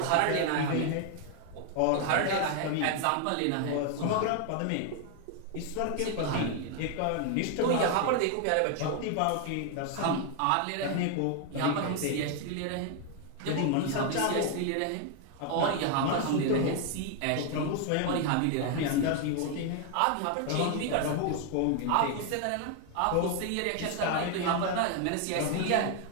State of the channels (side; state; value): both; different; correlation 0.01